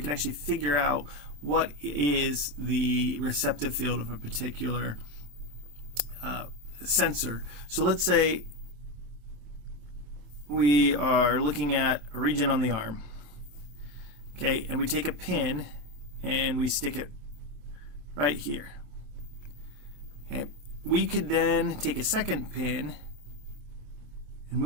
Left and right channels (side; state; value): left; late; 27 ms